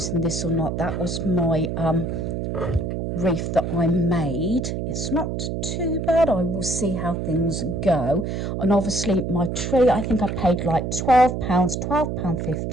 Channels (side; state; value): right; noise; hum, 3 dB below the sound